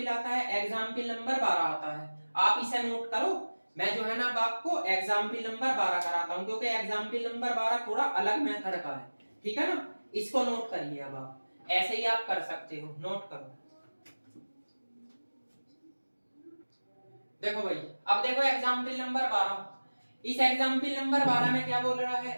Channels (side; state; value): both; inverted; correlation -1.00